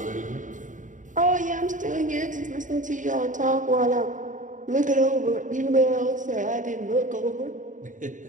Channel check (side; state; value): left; late; 0.37 ms